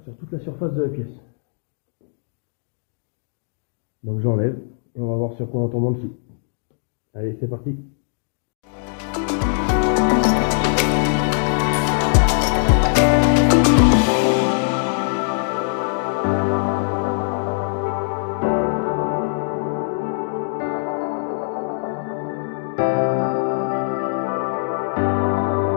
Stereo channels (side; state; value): right; silent; digital silence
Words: toute la surface de la pièce. Donc j'enlève et on va voir sur quoi on tombe en dessous. Allez, c'est parti.